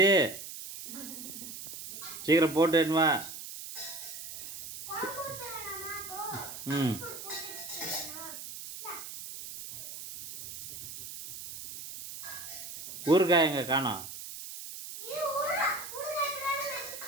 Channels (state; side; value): noise; right; hiss, 10 dB below the sound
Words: சீக்கிரம் போட்டு வா. ம், ஊறுகாய் எங்க காணோம்?